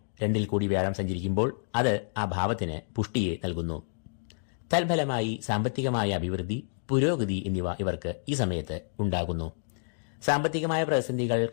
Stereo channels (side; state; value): right; silent; digital silence